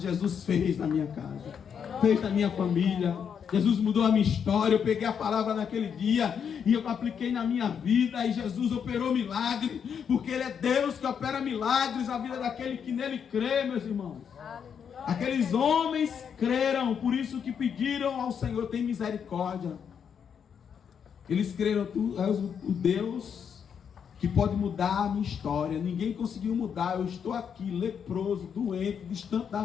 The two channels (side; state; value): right; quieter; 7.4 dB